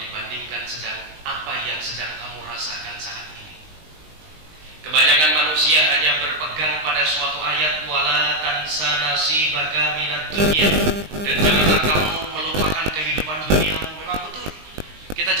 apa yang sedang kamu rasakan saat ini. Kebanyakan manusia hanya berpegang pada suatu ayat wala tansa nasibaka minad dunya, dan janganlah kamu melupakan kehidupan duniamu. Memang betul, kita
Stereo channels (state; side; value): late; left; 20 ms